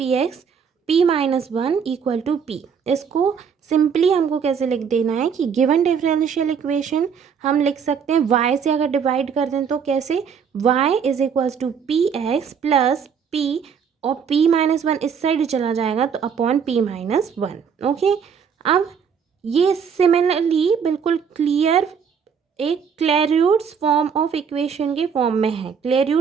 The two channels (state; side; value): quieter; left; 6.8 dB